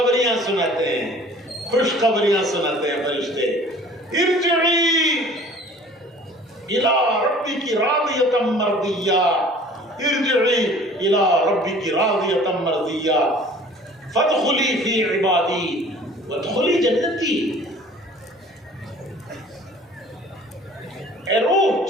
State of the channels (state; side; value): normal; both; correlation 0.49